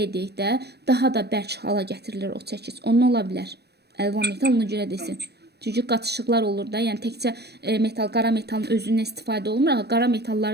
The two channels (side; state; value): left; late; 0.48 ms